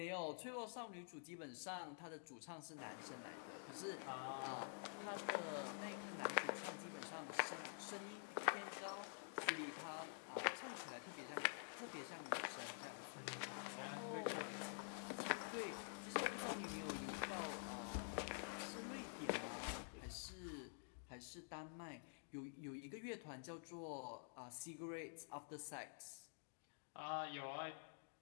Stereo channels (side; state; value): right; silent; digital silence